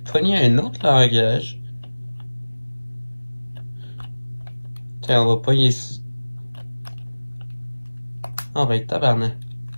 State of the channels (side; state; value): both; inverted; correlation -1.00